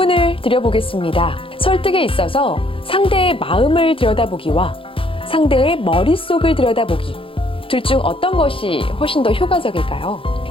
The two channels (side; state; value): right; late; 0.26 ms